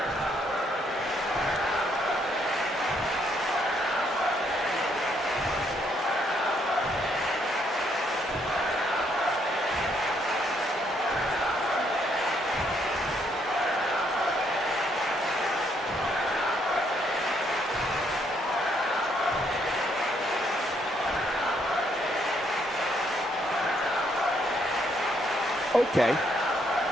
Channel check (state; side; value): normal; both; correlation 0.72